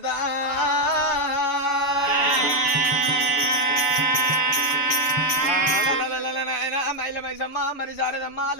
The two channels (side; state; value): right; late; 6.9 ms